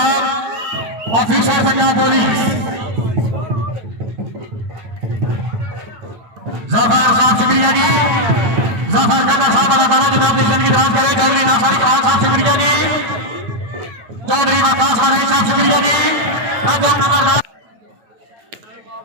ऑफिसर पंजाब पुलिस जफर साहब शुक्रिया जी जफर का साहब अल्लाह ताला जनाब की जिंदगी दराज करे चौधरी नासर खान साहब शुक्रिया जी चौधरी वकास वाले साहब शुक्रिया जी नजम नंबर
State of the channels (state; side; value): late; left; 9.0 ms